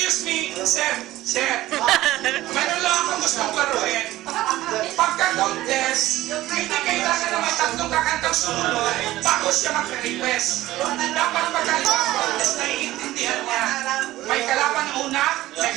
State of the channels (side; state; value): left; quieter; 16.1 dB